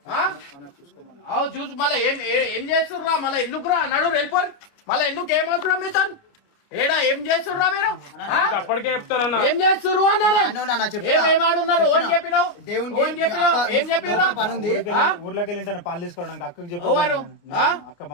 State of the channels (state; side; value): late; right; 29 ms